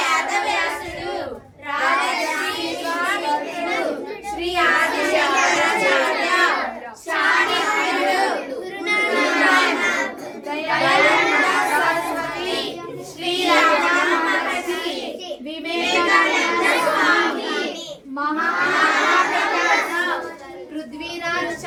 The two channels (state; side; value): identical; both; correlation 1.00